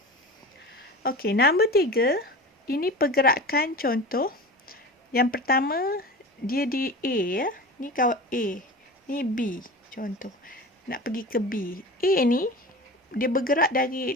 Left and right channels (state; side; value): normal; both; correlation 0.32